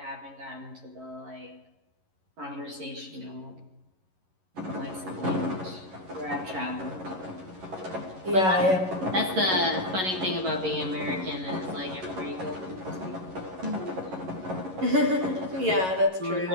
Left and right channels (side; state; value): left; late; 11 ms